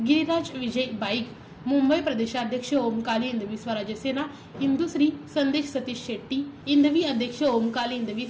विजय बाईक, मुंबई प्रदेशाध्यक्ष ओम काली हिंदवी स्वराज्य सेना इंदुश्री संदेश सतीश शेट्टी, हिंदवी अध्यक्ष ओम काली हिंदवी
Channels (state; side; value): identical; both; correlation 1.00